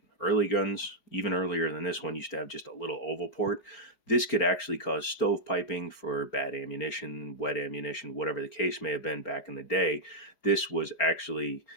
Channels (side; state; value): right; late; 4.4 ms